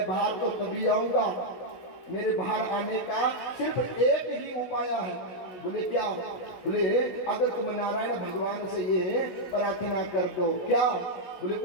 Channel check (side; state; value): right; late; 16 ms